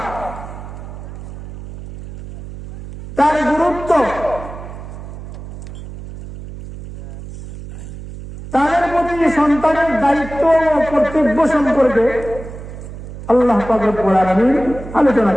তার গুরুত্ব, তাদের প্রতি সন্তানের দায়িত্ব ও কর্তব্য সম্পর্কে আল্লাহ পাক রব্বুল আলামিন আলোচনা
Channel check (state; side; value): noise; right; hum, 12 dB below the sound